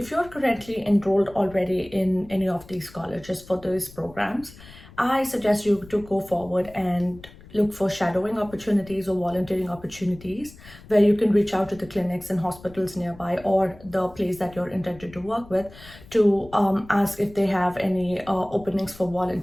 you're currently enrolled already in any of these colleges for these programs, I suggest you to go forward and look for shadowing opportunities or volunteering opportunities where you can reach out to the clinics and hospitals nearby or the place that you're intended to work with to ask if they have any openings for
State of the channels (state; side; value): noise; left; rumble, 20 dB below the sound